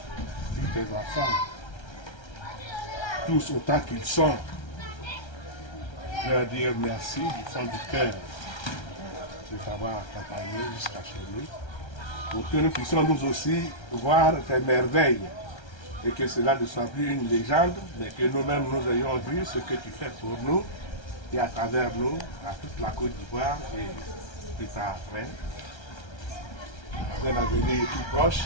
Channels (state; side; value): late; right; 1.3 ms